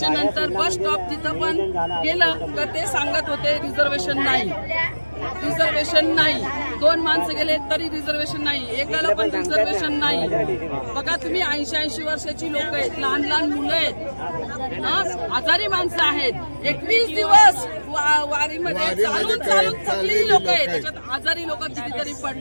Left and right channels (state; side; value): inverted; both; correlation -1.00